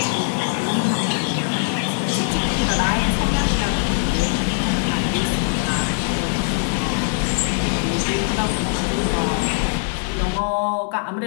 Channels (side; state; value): right; silent; digital silence